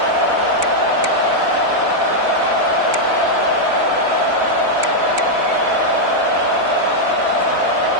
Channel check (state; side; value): late; left; 4.0 ms